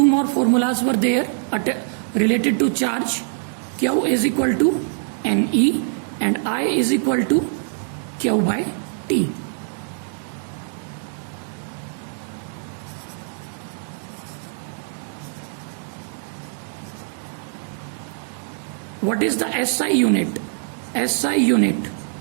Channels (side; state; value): left; silent; 63 dB below the other